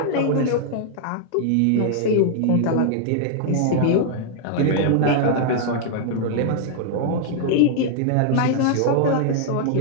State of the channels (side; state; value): both; different; correlation -0.01